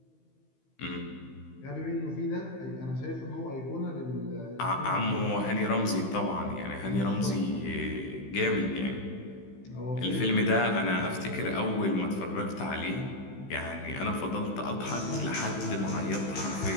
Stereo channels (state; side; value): late; right; 15 ms